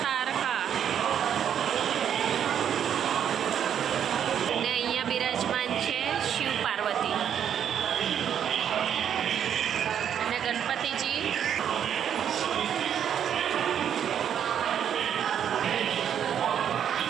તારકા. અને અહીંયા બિરાજમાન છે શિવ પાર્વતી અને ગણપતિજી.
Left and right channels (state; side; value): quieter; left; 9.0 dB